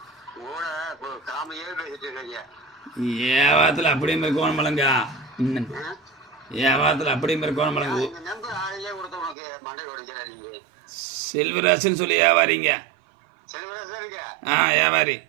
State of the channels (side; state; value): left; drops out; at 9.3 s